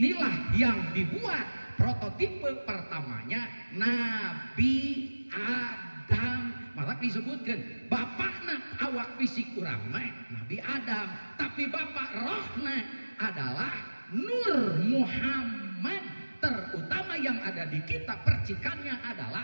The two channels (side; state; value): both; inverted; correlation -1.00